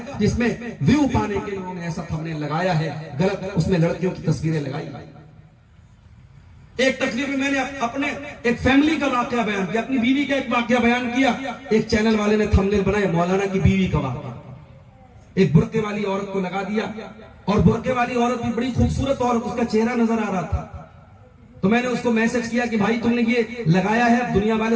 جس میں ویو پانے کے لیے انہوں نے ایسا تھمبنیل لگایا ہے غلط, اس میں لڑکیوں کی تصویریں لگائی. ایک تقریر میں نے اپنے ایک فیملی کا واقعہ بیان کیا, اپنی بیوی کا ایک واقعہ بیان کیا. ایک چینل والے نے تھمبنیل بنایا مولانا کی بیوی کا واقعہ, ایک برقعے والی عورت کو لگا دیا, اور برقعے والی عورت بھی بڑی خوبصورت عورت, اس کا چہرہ نظر آ رہا تھا. تو میں نے اس کو میسج کیا کہ بھائی تم نے یہ لگایا ہے, دنیا والے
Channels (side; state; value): both; identical; correlation 1.00